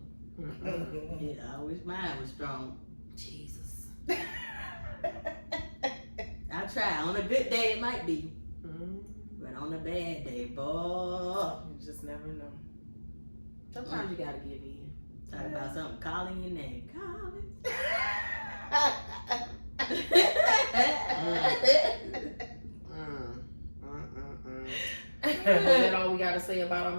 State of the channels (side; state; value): both; inverted; correlation -1.00